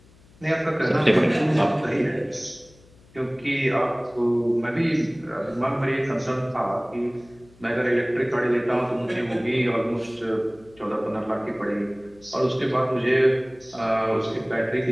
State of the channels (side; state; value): left; noise; hum, 27 dB below the sound